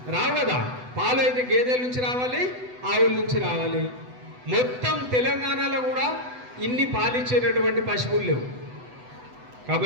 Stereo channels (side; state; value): left; late; 8.0 ms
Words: రావు కదా. పాలు అయితే గేదెల నుంచి రావాలి, ఆవుల నుంచి రావాలి. మొత్తం తెలంగాణలో కూడా ఇన్ని పాలిచ్చేటటువంటి పశువులు లేవు.